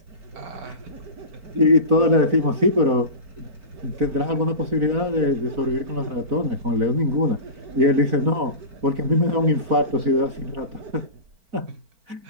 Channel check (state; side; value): late; left; 4.4 ms